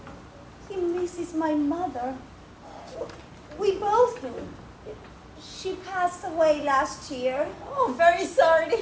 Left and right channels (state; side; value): identical; both; correlation 1.00